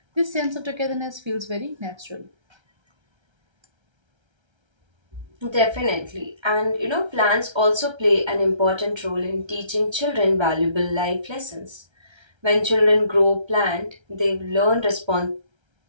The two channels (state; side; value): late; left; 1.3 ms